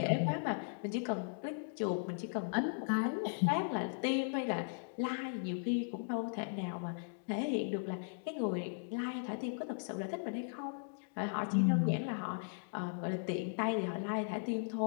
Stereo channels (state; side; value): silent; right; digital silence